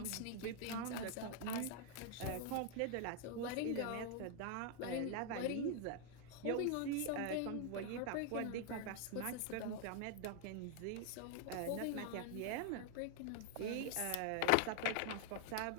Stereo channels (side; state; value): both; different; correlation 0.00